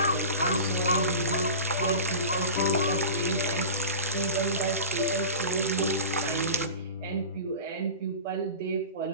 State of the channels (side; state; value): both; inverted; correlation -0.31